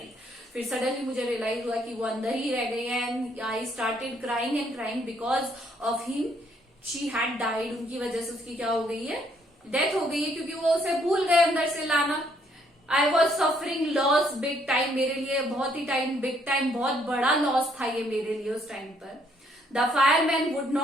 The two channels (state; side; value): normal; both; correlation 0.68